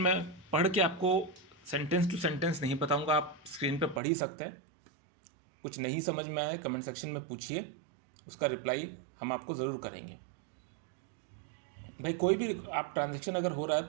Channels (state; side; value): drops out; left; at 4.0 s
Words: पढ़ के आपको सेंटेंस टू सेंटेंस नहीं बताऊंगा, आप स्क्रीन पे पढ़ ही सकते हैं। कुछ नहीं समझ में आए कमेंट सेक्शन में पूछिए, उसका रिप्लाई हम आपको ज़रूर करेंगे। भाई कोई भी आप ट्रांजैक्शन अगर हो रहा है